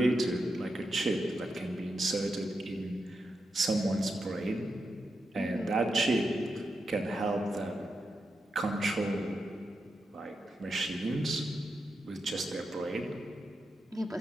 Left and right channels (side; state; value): both; normal; correlation 0.86